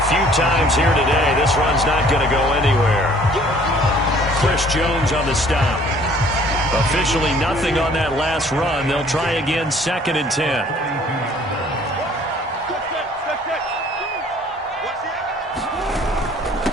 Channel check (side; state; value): both; normal; correlation 0.56